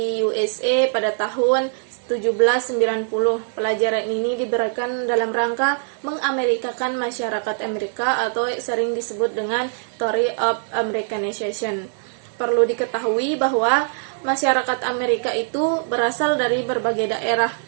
USA pada tahun 1790. Pelajaran ini diberikan dalam rangka mengamerikakan masyarakat Amerika atau sering disebut dengan Theory of Americanization. Perlu diketahui bahwa masyarakat Amerika itu berasal dari berbagai daerah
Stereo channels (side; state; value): left; silent; 64 dB below the other